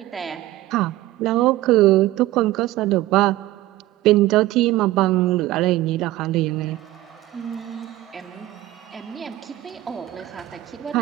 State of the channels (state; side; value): quieter; left; 16.2 dB